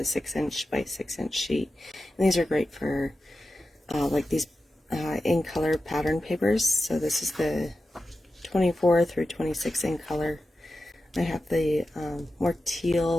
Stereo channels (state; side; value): normal; both; correlation 0.92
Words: 6" by 6" sheet. And these are great for like these in color pattern papers. So this is the 24 through 26 in color. I have the more